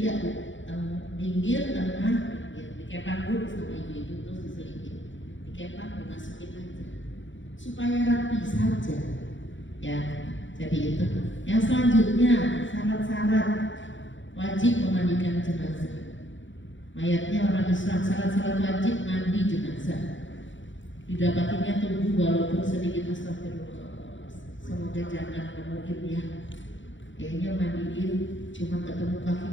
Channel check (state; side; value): late; right; 0.55 ms